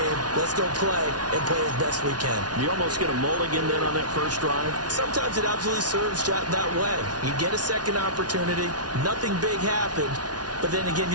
Let's go play and play as best we can. You almost get a mulligan then on that first drive? Sometimes it absolutely serves that way. You get a second opportunity. Nothing big happened. But then again,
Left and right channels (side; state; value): left; late; 0.69 ms